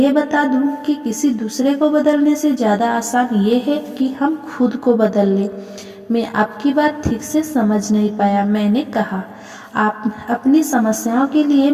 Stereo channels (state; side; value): identical; both; correlation 1.00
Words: बता दूं कि किसी दूसरे को बदलने से ज़्यादा आसान ये है कि हम खुद को बदल लें। मैं आपकी बात ठीक से समझ नहीं पाया। मैंने कहा, आप अपनी समस्याओं के लिए